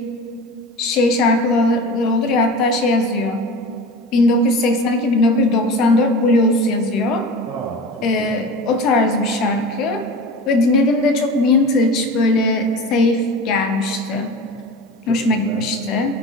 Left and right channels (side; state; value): both; normal; correlation 0.34